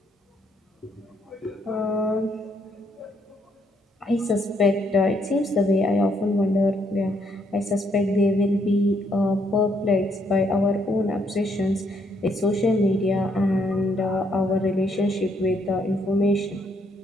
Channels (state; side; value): normal; both; correlation 0.72